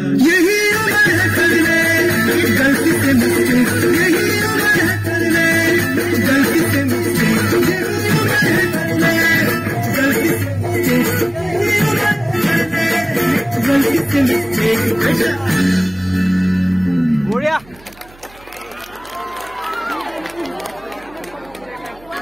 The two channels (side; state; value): right; noise; hum, 26 dB below the sound